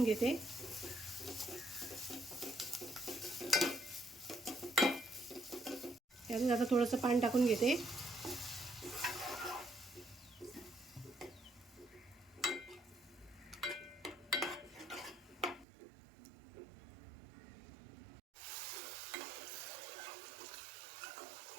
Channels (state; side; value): drops out; left; at 15.7 s